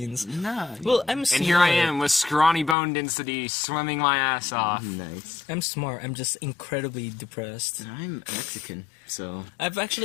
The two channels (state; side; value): drops out; right; at 2.8 s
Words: Nah. Well, I'm smart. And here I am with scrawny bone density, swimming my ass off. Nice. I'm smart. I'm just incredibly depressed. I'm Mexican, so